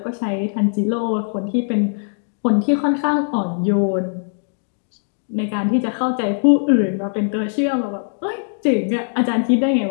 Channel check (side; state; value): right; silent; digital silence